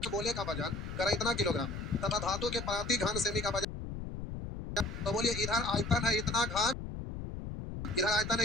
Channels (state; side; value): noise; left; rumble, 7 dB below the sound